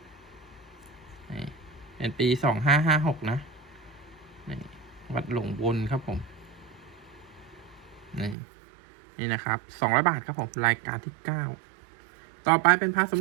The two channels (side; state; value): left; drops out; at 8.3 s